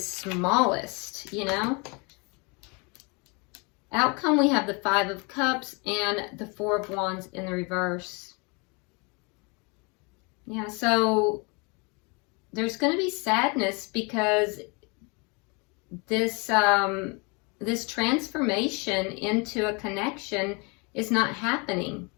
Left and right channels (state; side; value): quieter; right; 31.0 dB